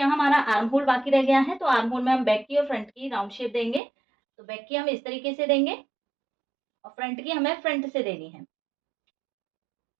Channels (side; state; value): left; drops out; at 3.8 s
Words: हमारा आर्म होल बाकी रह गया है। तो आर्म होल में हम बैक की और फ्रंट की राउंड शेप देंगे। तो बैक की हम इस तरीके से देंगे और फ्रंट की हमें फ्रंट से देनी है,